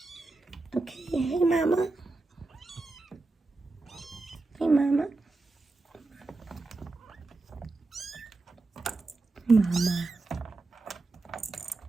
Okay. Hey, Mama. Hey, Mama. Mama.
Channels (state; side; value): quieter; left; 3.3 dB